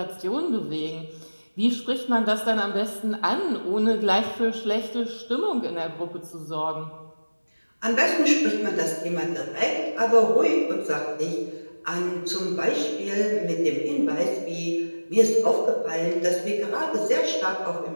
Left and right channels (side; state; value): both; inverted; correlation -1.00